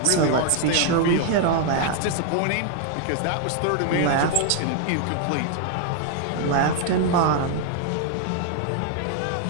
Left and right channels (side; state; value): both; different; correlation 0.00